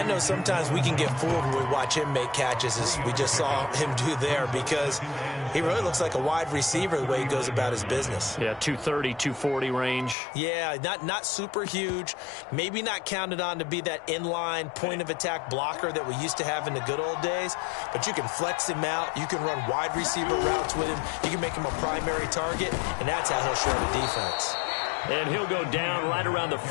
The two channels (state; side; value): drops out; right; at 10.2 s